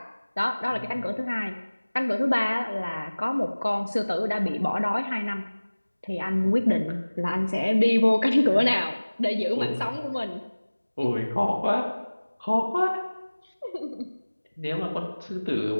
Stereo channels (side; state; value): both; inverted; correlation -1.00